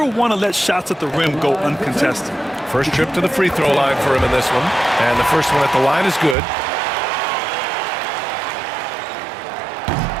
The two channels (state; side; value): drops out; left; at 6.4 s